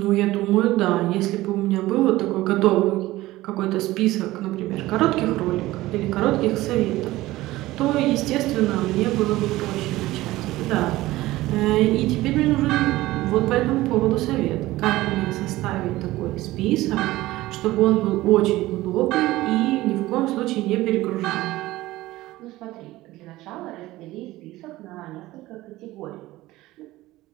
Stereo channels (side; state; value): left; quieter; 17.5 dB